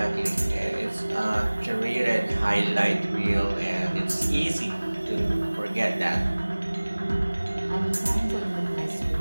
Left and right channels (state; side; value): inverted; both; correlation -1.00